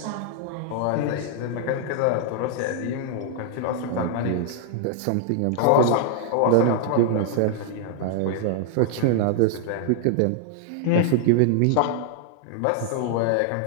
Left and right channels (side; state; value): both; different; correlation -0.01